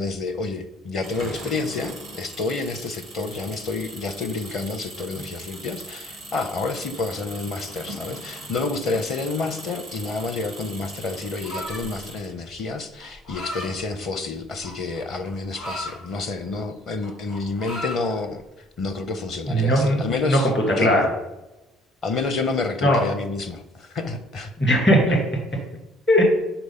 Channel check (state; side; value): normal; both; correlation 0.57